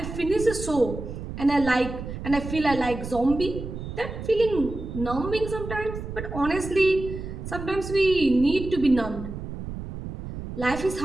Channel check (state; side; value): noise; right; rumble, 8 dB below the sound